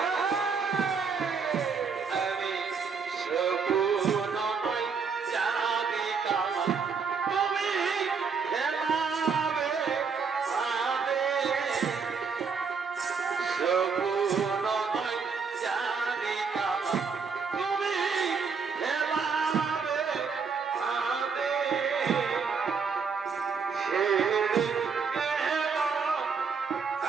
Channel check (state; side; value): quieter; left; 5.5 dB